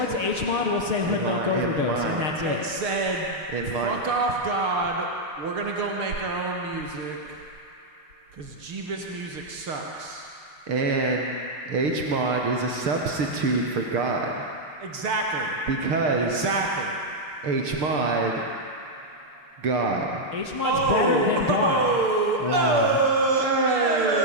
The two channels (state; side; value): late; left; 6.7 ms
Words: HMOD, we'll say hood milk overdose, and that's It it. said, In mind. fuck off God, we're gonna go make our own music, cause Jeebus music sucks. And HMOD is a substitute for God. Exactly. Because HMOD, God. HMOD's better than God. Wow.